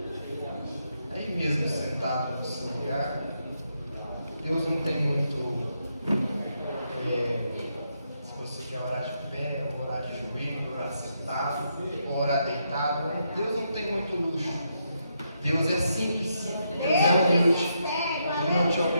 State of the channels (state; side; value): inverted; both; correlation -0.80